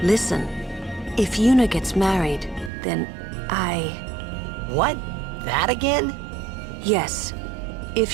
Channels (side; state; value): left; drops out; at 2.7 s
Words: Listen, if Yuna gets married, then What? That again? Yes. If